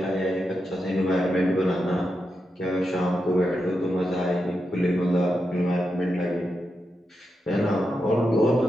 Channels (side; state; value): both; normal; correlation 0.87